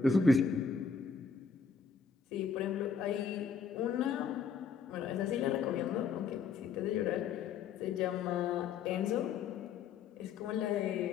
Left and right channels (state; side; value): quieter; right; 5.9 dB